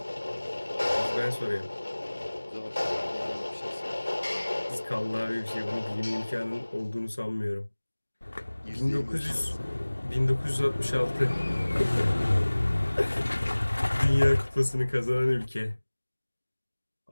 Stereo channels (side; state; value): both; inverted; correlation -1.00